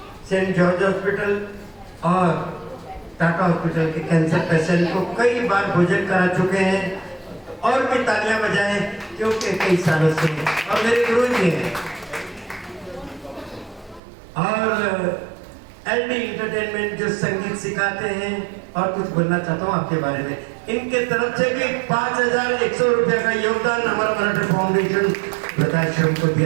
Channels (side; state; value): left; drops out; at 14.0 s